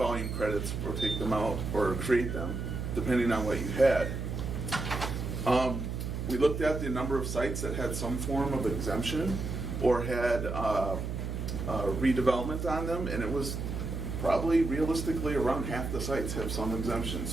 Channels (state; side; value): noise; right; hum, 4 dB below the sound